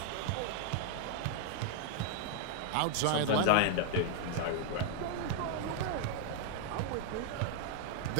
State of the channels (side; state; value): both; different; correlation 0.01